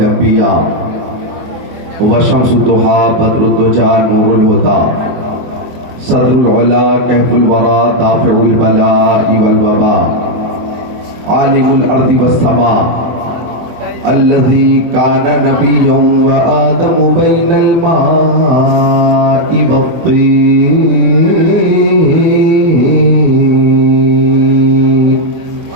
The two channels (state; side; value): late; left; 23 ms